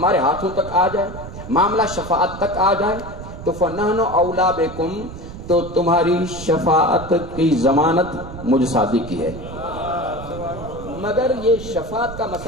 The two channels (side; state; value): right; noise; rumble, 11 dB below the sound